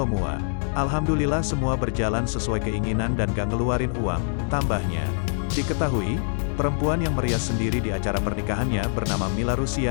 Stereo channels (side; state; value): right; silent; digital silence